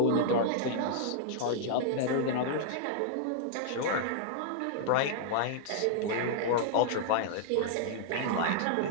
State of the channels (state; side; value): different; both; correlation -0.01